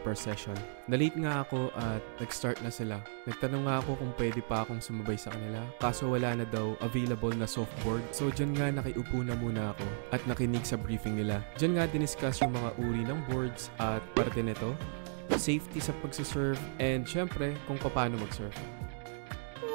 per session. Na-late nga ako at nag-start na sila. Nagtanong nga ako kung pwede pa akong sumabay sa kanila. Kaso wala na daw available na softboard. So dyan nga nakiupo na muna ako at nakinig sa briefing nila. Dyan nga diniscuss yung mga uri ng boards at parte nito, safety sa pagsasurf, and syempre kung paano mag-surf.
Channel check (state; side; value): silent; left; digital silence